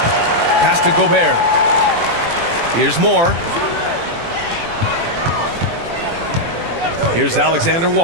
Pass to Gobert. Here's Moore. Here's Alexander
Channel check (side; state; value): left; late; 18 ms